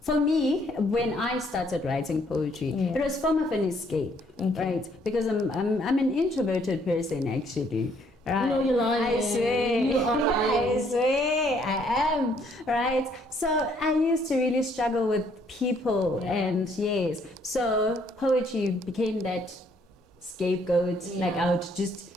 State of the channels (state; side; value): normal; both; correlation 0.66